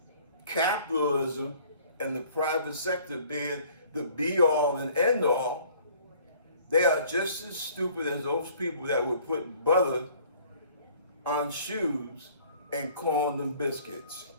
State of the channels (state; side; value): inverted; both; correlation -0.55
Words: capitalism and the private sector being the be all and end all, they are just as stupid as those people that would put butter on shoes and call them biscuits.